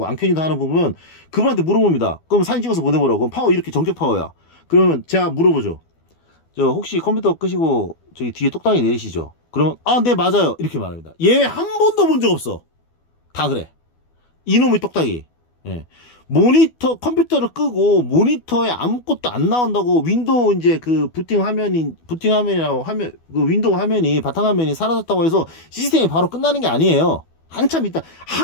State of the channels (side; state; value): right; late; 12 ms